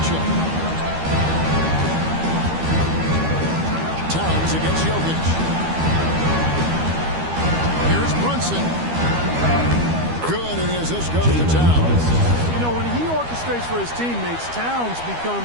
Towns against Jokic. Here's Brunson. Good it is. This goes to Towns. You know, when he orchestrates for his teammates, Towns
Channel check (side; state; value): left; late; 13 ms